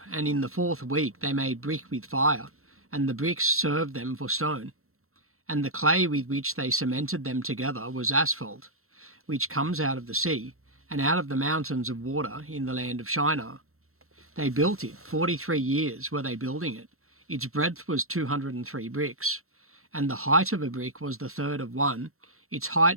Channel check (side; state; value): left; late; 0.63 ms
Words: and in the 4th week they made brick with fire, and the bricks served them for stone. And the clay with which they cemented them together was asphalt, which comes out of the sea, and out of the mountains of water in the land of Shinar. They built it, 43 years were they building it. Its breadth was 203 bricks, and the height of a brick was the third of one, Its